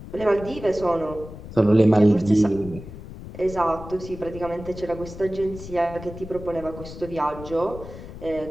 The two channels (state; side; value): noise; left; rumble, 13 dB below the sound